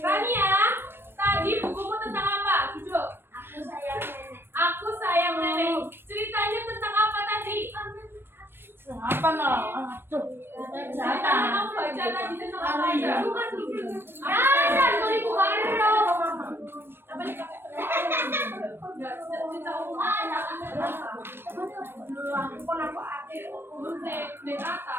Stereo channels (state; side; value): late; left; 0.10 ms